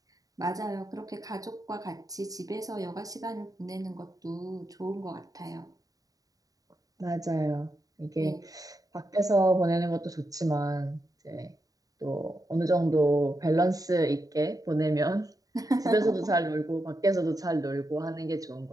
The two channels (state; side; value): late; left; 0.18 ms